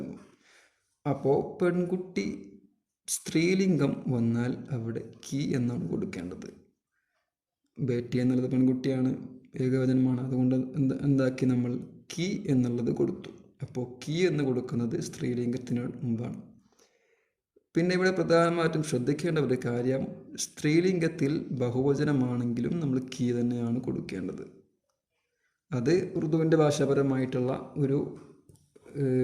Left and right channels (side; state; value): both; identical; correlation 1.00